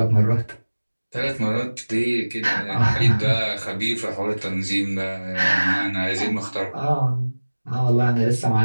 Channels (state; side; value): inverted; both; correlation -1.00